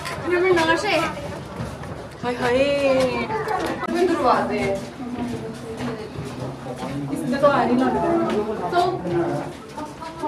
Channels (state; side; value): identical; both; correlation 1.00